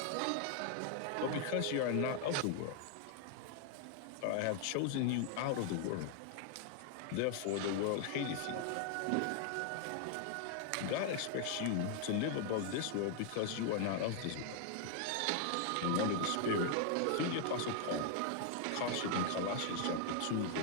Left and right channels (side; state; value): both; different; correlation 0.00